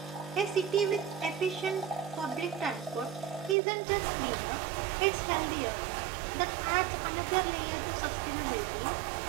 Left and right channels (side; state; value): left; drops out; at 3.6 s